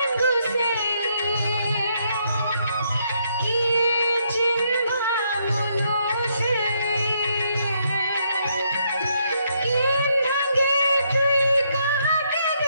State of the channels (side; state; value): both; inverted; correlation -0.74